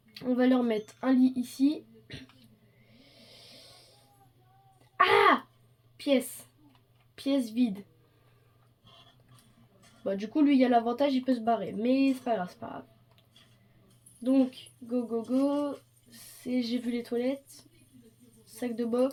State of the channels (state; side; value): identical; both; correlation 1.00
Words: On va leur mettre un lit ici. Ah! Pièce. Pièce vide. Bah, du coup, lui, il y a l'avantage, il peut se barrer. Mais c'est pas grave, c'est pas grave. Donc, go, go, go. J'ai vu les toilettes. Sac de